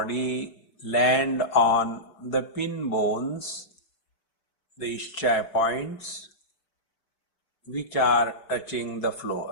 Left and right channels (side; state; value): right; late; 5.3 ms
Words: land on the pin bones, the ischial points, which are touching the